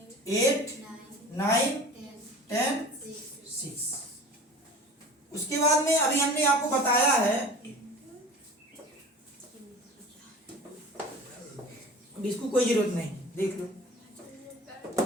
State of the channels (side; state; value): both; normal; correlation 0.38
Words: 8, 9, 10, 6। उसके बाद में अभी हमने आपको बताया है, इसको कोई जरूरत नहीं, देख लो।